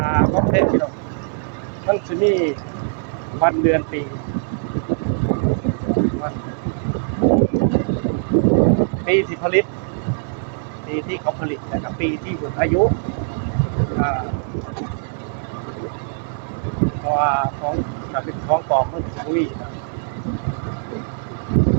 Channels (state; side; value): silent; left; 65 dB below the other